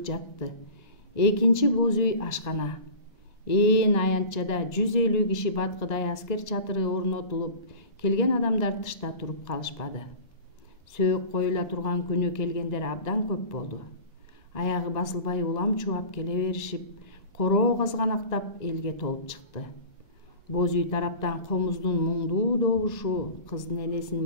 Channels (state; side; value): late; right; 1.9 ms